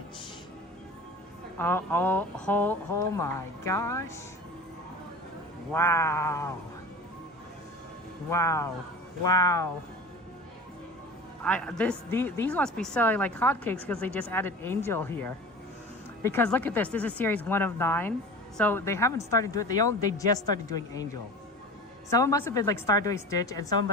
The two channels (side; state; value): both; normal; correlation 0.35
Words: Oh my gosh. Wow. These must be selling like hotcakes because they just added Angel here. Because look at this is series 1 of 9. So they haven't started doing they just started doing Angel. Someone must have been like start doing Stitch, and someone